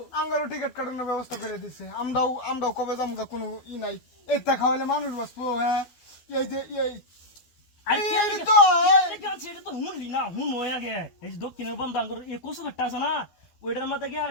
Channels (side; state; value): right; late; 12 ms